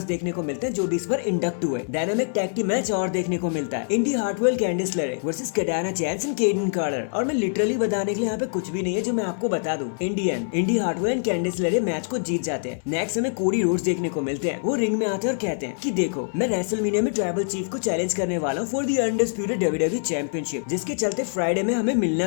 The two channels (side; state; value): right; silent; digital silence